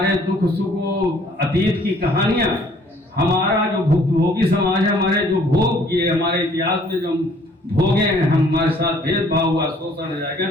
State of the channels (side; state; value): both; normal; correlation 0.59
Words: दुख सुख, अतीत की कहानियां, हमारा जो भोगी समाज है, हमारे जो भोग किए, हमारे इतिहास में जो भोगे हैं, हमारे साथ भेदभाव हुआ, शोषण हो जाएगा,